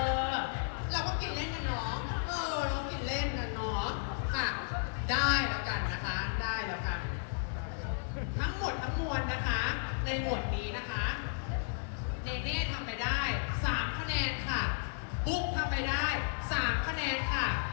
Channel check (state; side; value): silent; right; digital silence